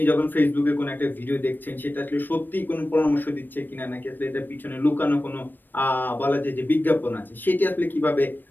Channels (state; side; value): late; right; 0.092 ms